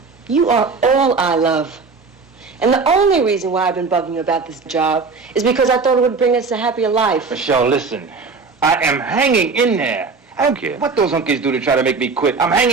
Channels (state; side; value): quieter; left; 4.5 dB